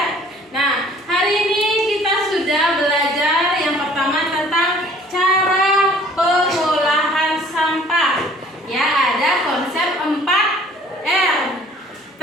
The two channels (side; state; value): both; normal; correlation 0.54